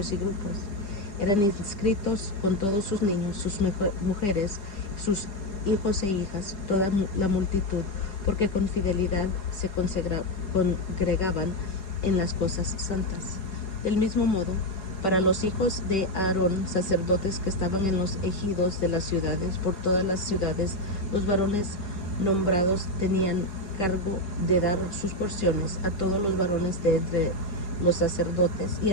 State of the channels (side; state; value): right; late; 4.8 ms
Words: y grupos. Eran inscritos con todos sus niños, sus mujeres, sus hijos e hijas, toda la multitud, porque con fidelidad se congregaban en las cosas santas. Del mismo modo, para los hijos de Aarón, sacerdotes que estaban en los ejidos de las ciudades, por todas las ciudades, los varones nombrados tenían cargo de dar sus porciones a todos los varones de entre los sacerdotes y